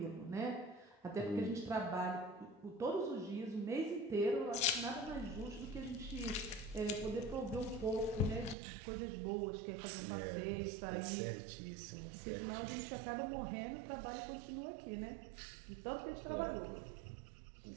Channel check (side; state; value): left; drops out; at 8.6 s